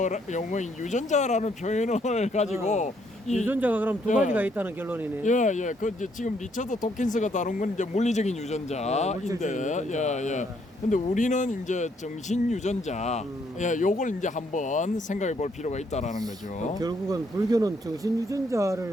유전자라는 표현을 가지고 유전자가 그럼 두 가지가 있다는 결론이네. 예. 그 이제 지금 리처드 도킨스가 다룬 건 이제 물리적인 유전자인데, 예. 근데 우리는 이제 정신 유전자, 요걸 이제 한번 생각해 볼 필요가 있다라는 거죠. 결국은 불교는 정신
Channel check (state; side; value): normal; both; correlation 0.71